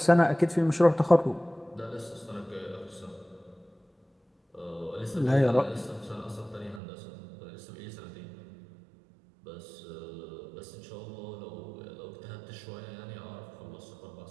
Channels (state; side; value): drops out; left; at 6.8 s